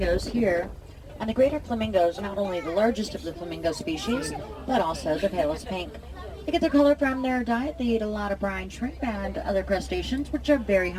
here, and the greater flamingo is not only the largest of the flamingo species, but also the palest pink. They get their color from their diet. They eat a lot of brine shrimp and other crustaceans, which are very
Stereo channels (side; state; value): both; identical; correlation 1.00